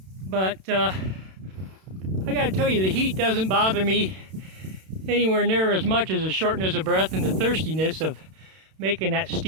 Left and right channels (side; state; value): left; late; 32 ms